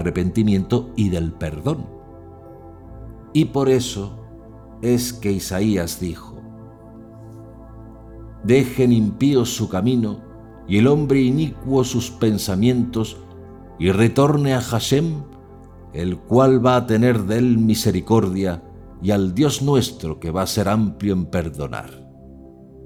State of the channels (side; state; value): both; identical; correlation 1.00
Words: y del perdón. Y por eso es que Isaías dijo: dejen impíos su camino y el hombre inicuo sus pensamientos, y retorne a Hashem, el cual va a tener de él misericordia, y al Dios nuestro, que va a ser amplio en perdonar.